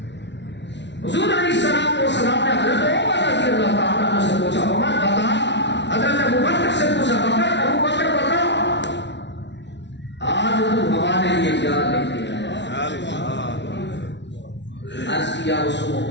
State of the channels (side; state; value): right; late; 0.51 ms